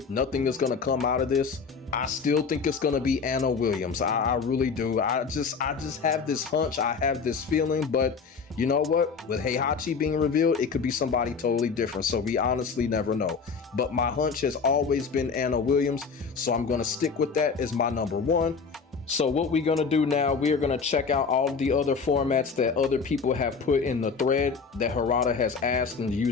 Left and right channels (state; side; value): quieter; right; 5.3 dB